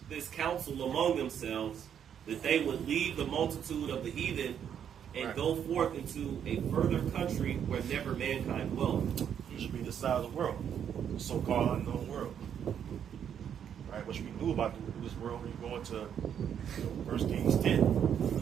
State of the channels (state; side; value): quieter; left; 8.7 dB